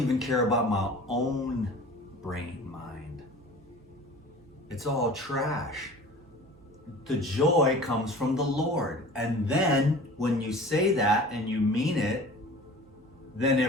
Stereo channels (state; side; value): noise; right; hum, 27 dB below the sound